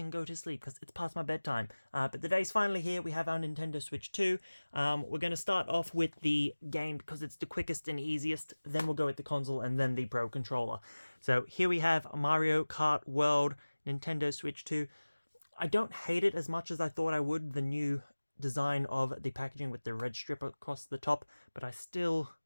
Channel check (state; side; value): inverted; both; correlation -1.00